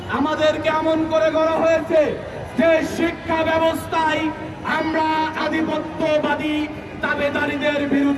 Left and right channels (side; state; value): both; identical; correlation 1.00